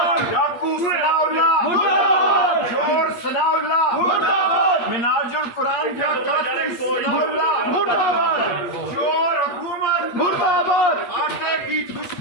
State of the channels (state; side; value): late; right; 8.5 ms